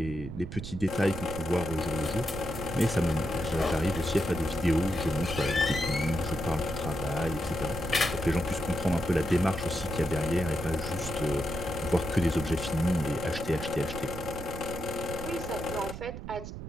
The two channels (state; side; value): noise; right; rumble, 8 dB below the sound